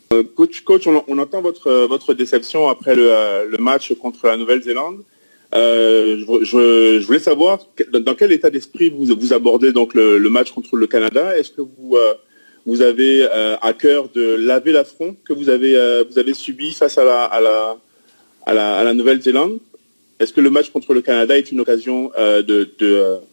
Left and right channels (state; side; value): inverted; both; correlation -1.00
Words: Coach, on entend votre déception après le match contre la Nouvelle-Zélande. Je voulais savoir dans quel état d'esprit vous abordez donc le match contre le Canada. Est-ce que vous avez à cœur de laver l'affront que vous avez subi face à la Nouvelle-Zélande? Est-ce que le match contre le Canada est une occasion de